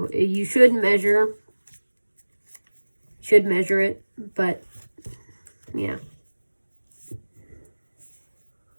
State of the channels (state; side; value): inverted; both; correlation -1.00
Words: you should measure it, but yeah.